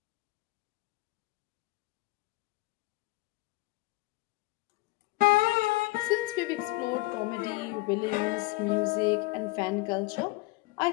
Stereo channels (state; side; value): quieter; right; 21.9 dB